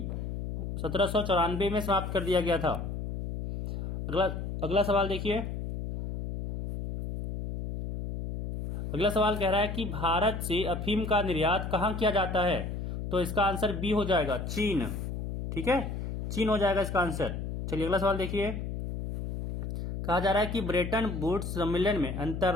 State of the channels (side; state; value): left; noise; hum, 5 dB below the sound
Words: 1794 में समाप्त कर दिया गया था। अगला सवाल देखिए। अगला सवाल कह रहा है कि भारत से अफीम का निर्यात कहां किया जाता है, तो इसका आंसर बी हो जाएगा, चीन। ठीक है, चीन हो जाएगा इसका आंसर। चलिए अगला सवाल देखिए। कहा जा रहा है कि ब्रेटन वुड्स सम्मेलन में